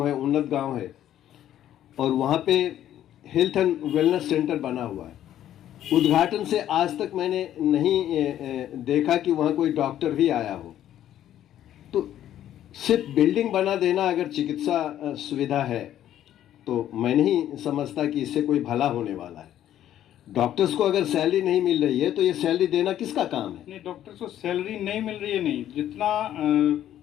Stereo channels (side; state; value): right; quieter; 11.7 dB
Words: है, उन्नत गांव है, और वहाँ पे हेल्थ एंड वेलनेस सेंटर बना हुआ है। उद्घाटन से आज तक मैंने नहीं देखा कि वहाँ कोई डॉक्टर भी आया हो। तो सिर्फ बिल्डिंग बना देना अगर चिकित्सा सुविधा है तो मैं नहीं समझता कि इससे कोई भला होने वाला है। डॉक्टर्स को अगर सैलरी नहीं मिल रही है तो ये सैलरी देना किसका काम है? नहीं, डॉक्टर्स को सैलरी नहीं मिल रही है, नहीं, जितना